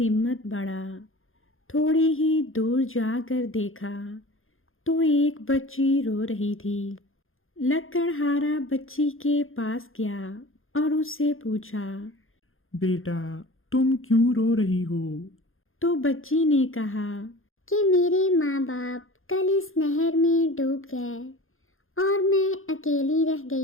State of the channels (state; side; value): late; right; 0.60 ms